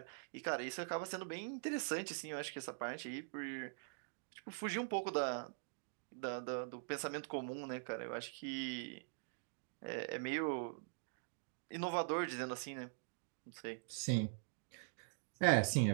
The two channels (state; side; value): silent; left; digital silence